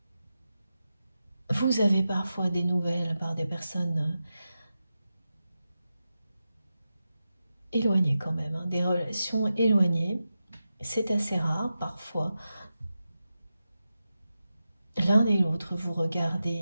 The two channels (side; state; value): both; inverted; correlation -0.91